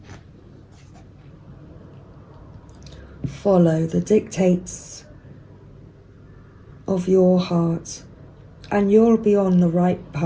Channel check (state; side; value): identical; both; correlation 1.00